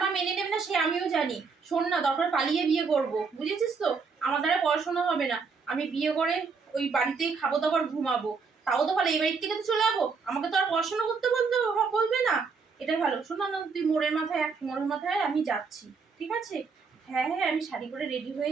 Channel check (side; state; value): left; quieter; 5.1 dB